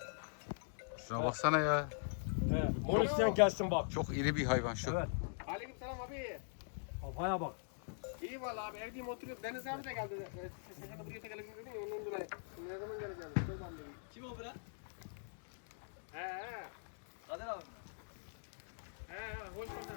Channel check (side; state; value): right; silent; digital silence